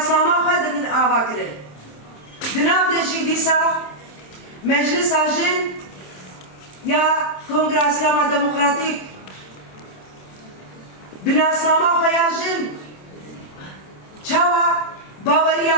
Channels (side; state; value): right; late; 27 ms